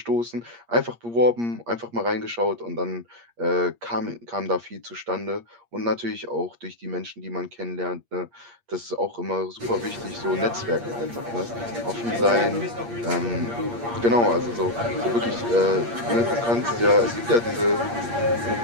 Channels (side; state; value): left; late; 8.6 ms